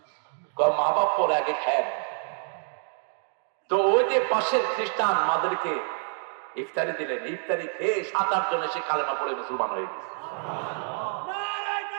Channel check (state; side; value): silent; left; 60 dB below the other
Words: মা বাপ পরে আগে খায়। তো ওই যে পাশের খ্রিস্টান মাদেরকে ইফতারি দিলেন, ইফতারি খেয়ে 7-8 জন এসে কালেমা পড়ে মুসলমান হয়ে গেছে।